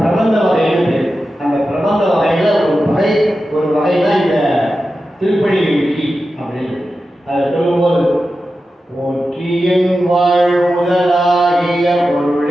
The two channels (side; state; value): both; normal; correlation 0.92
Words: பிரபந்த வகைன்னு. அந்த பிரபந்த வகையில் ஒரு வகை தான் இந்த திருப்பள்ளி எழுச்சி அப்படின்னு. அதை சொல்லும்போது போற்றியன் வாழ் முதலாகிய